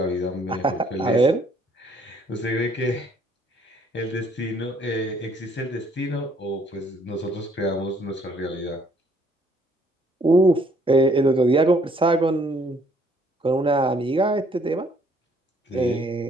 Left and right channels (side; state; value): both; normal; correlation 0.64